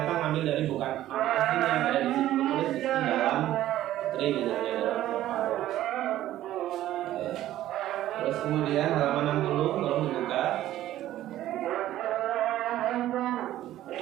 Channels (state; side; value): quieter; left; 13.6 dB